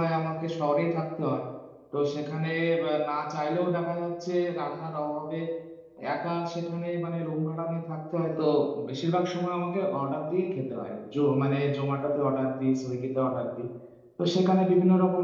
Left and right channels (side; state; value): both; identical; correlation 1.00